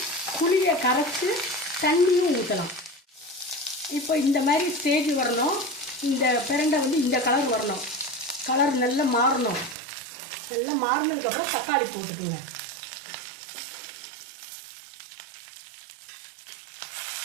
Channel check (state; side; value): drops out; left; at 9.8 s